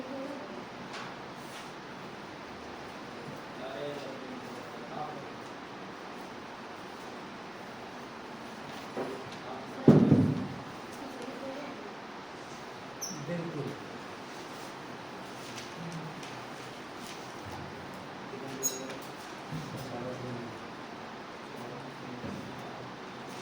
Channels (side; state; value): left; noise; rumble, 29 dB below the sound